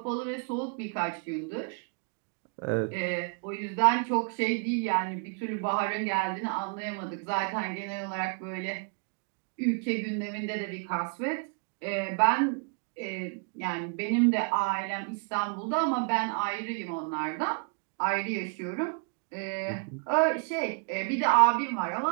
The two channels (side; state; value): left; quieter; 37.0 dB